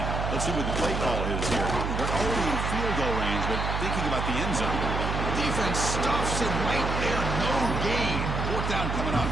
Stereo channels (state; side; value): noise; right; hum, 2 dB below the sound